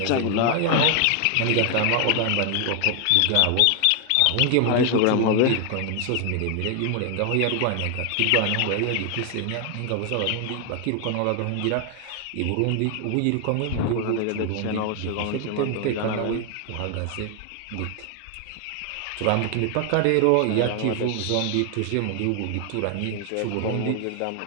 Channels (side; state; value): both; different; correlation 0.00